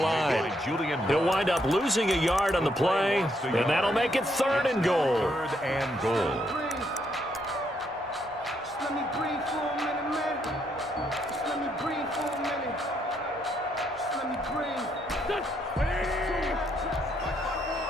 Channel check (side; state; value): both; normal; correlation 0.74